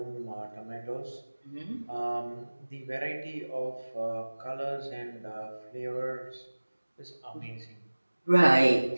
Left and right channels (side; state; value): both; inverted; correlation -1.00